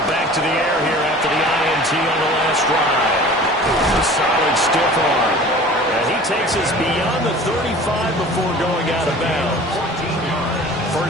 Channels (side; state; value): both; normal; correlation 0.43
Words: back to the air here after the INT on the last drive. A solid stiff arm. And he takes us beyond the 35 before going out of bounds.